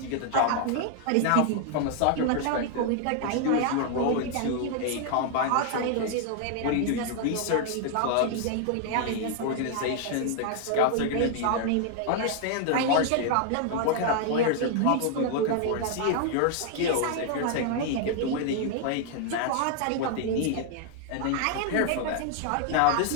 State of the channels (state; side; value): different; both; correlation 0.00